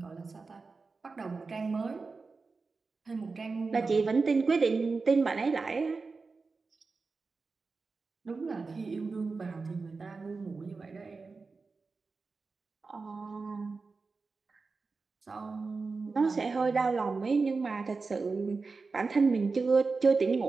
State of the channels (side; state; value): left; quieter; 4.2 dB